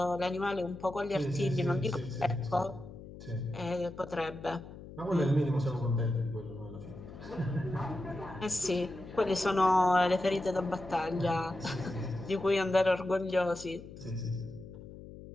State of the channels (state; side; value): noise; left; hum, 15 dB below the sound